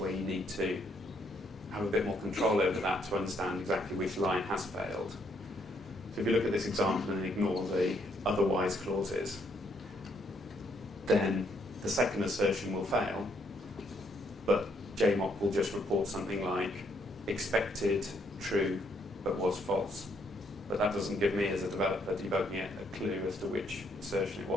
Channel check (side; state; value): both; normal; correlation 0.72